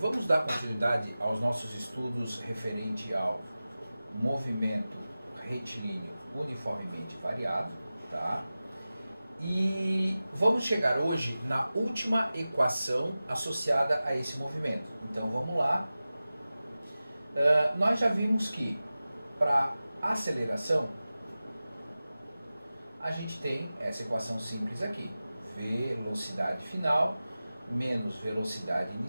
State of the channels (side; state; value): both; inverted; correlation -0.96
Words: dar continuidade aos nossos estudos referente ao movimento retilíneo uniformemente variado, tá? E vamos chegar hoje na última equação associada a esse movimento. Então vamos lá. Nós já vimos que para aceleração a gente tem essa equação simples aqui: velocidade final menos velocidade